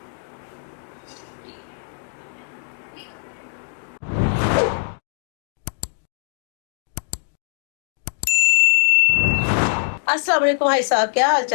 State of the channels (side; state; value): right; silent; digital silence